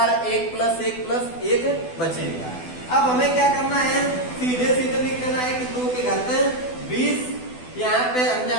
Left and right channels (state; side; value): late; right; 12 ms